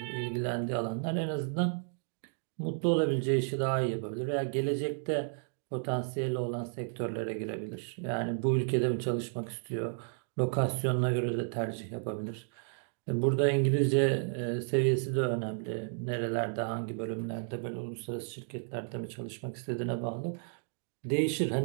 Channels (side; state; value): left; silent; digital silence